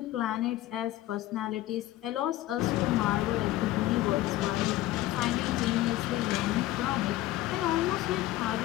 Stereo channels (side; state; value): right; quieter; 15.4 dB